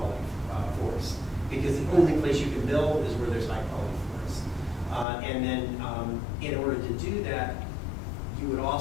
forests. Because the only place you can build is where there's high quality forests. And then in order to do that, you would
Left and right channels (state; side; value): drops out; right; at 5.1 s